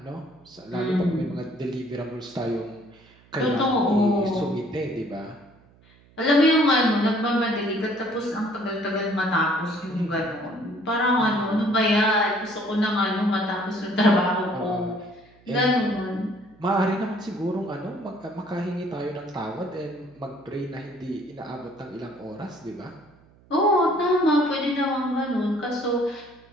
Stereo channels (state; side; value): noise; right; hum, 29 dB below the sound